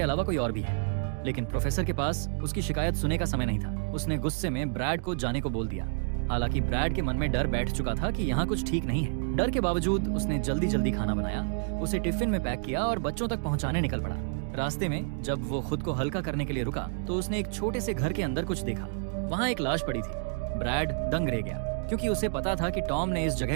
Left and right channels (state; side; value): silent; left; digital silence